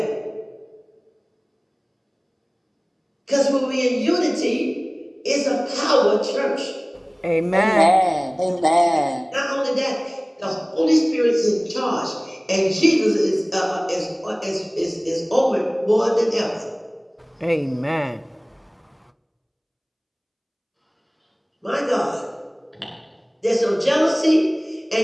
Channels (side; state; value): both; identical; correlation 1.00